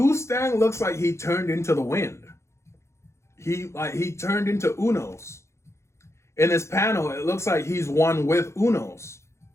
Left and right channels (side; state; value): right; late; 0.13 ms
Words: looks like he turned into the wind. He turned into Unos. In his panel, it looks like he's one with Unos.